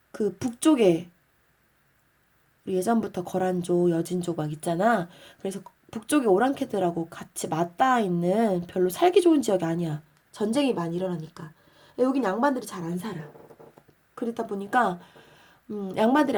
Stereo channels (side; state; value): both; identical; correlation 1.00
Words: 그 북쪽에 우리 예전부터 거란족, 여진족 막 있잖아. 그래서 북쪽에 오랑캐들하고 같이 맞닿아 있는 별로 살기 좋은 지역이 아니야. 전쟁이 많이 일어나니까. 여긴 양반들이 잘 안 살아. 그러다 보니까 양반들이